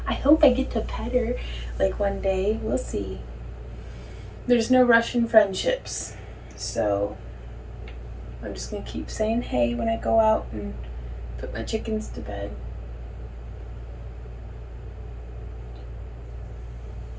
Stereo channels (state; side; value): identical; both; correlation 1.00